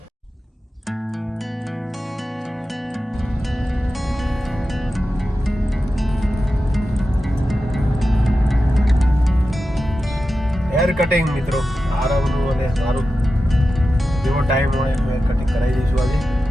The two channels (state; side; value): normal; both; correlation 0.92